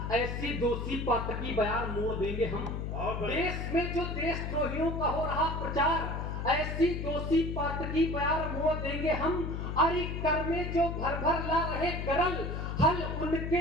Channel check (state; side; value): noise; left; hum, 4 dB below the sound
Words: ऐसी दोषी पातकी बयान मोड़ देंगे हम। देश में जो देशद्रोहियों का हो रहा प्रचार, ऐसी दोषी पातकी बयान मोड़ देंगे हम। अरे कर में जो भर भर ला रहे गरल, हल